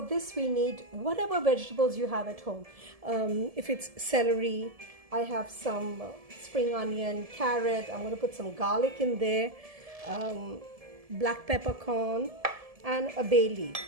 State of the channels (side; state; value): left; late; 1.7 ms